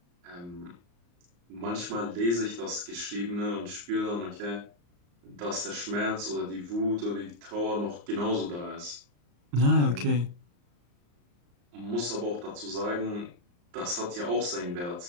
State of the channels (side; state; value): left; late; 34 ms